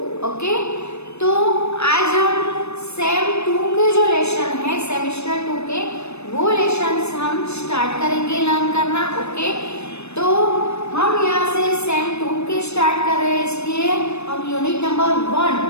Okay, तो आज हम same 2 के जो लेसन है सेमेस्टर 2 के वो लेसन्स हम स्टार्ट करेंगे लर्न करना. ओके, तो हम यहाँ से सेम 2 के स्टार्ट कर रहे हैं, इसलिए हम unit number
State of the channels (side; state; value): right; late; 0.81 ms